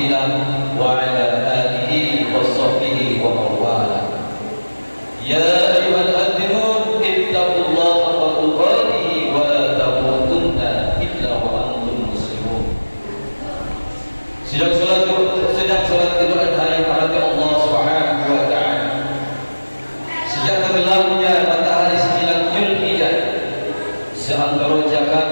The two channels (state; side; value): inverted; both; correlation -1.00